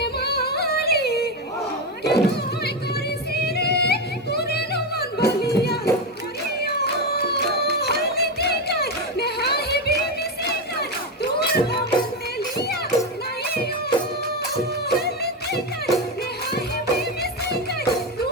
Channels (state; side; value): normal; both; correlation 0.12